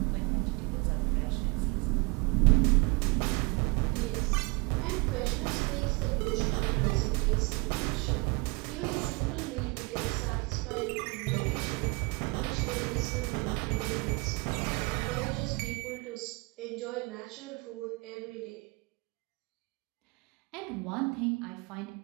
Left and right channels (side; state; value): left; quieter; 27.8 dB